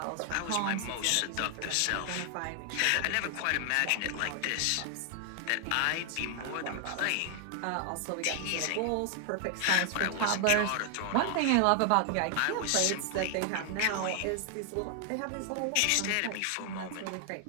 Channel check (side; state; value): both; different; correlation 0.00